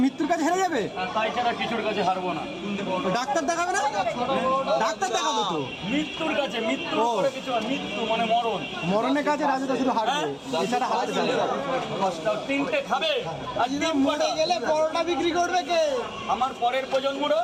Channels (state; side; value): identical; both; correlation 1.00